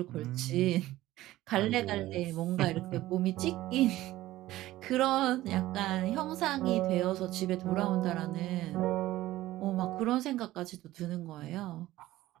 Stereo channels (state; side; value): quieter; left; 16.0 dB